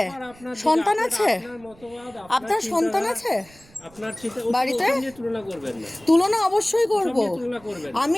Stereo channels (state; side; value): noise; right; rumble, 25 dB below the sound